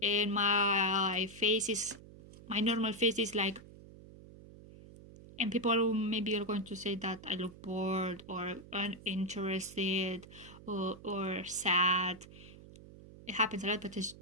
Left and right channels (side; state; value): right; noise; hum, 18 dB below the sound